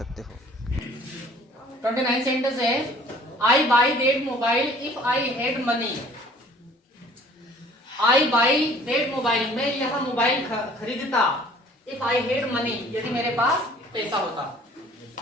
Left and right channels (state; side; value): normal; both; correlation 0.53